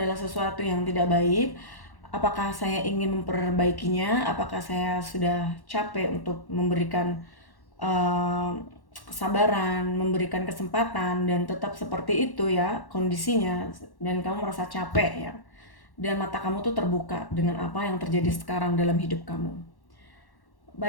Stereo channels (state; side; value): late; right; 1.1 ms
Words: sesuatu yang tidak baik. Apakah saya ingin memperbaikinya? Apakah saya sudah capek untuk memberikan kesabaran, memberikan kesempatan, dan tetap seperti itu ya kondisinya, dan kamu merasa capek ya, dan mata kamu tuh terbuka dengan apa yang terjadi sekarang dalam hidup kamu.